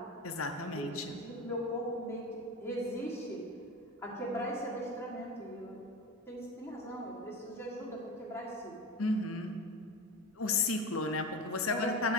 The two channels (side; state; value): both; normal; correlation 0.27